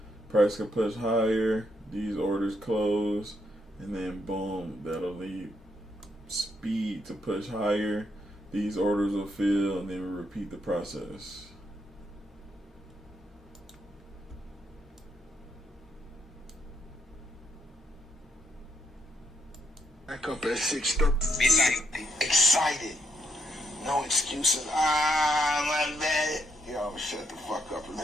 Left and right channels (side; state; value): both; normal; correlation 0.75